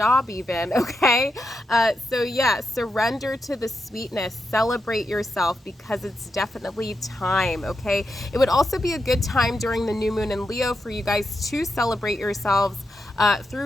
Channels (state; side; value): normal; both; correlation 0.86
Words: even, okay? So yeah, surrender to the sweetness, celebrate yourself, because it's definitely time, okay? It would also be a good time during the new moon in Leo for you guys to celebrate yourselves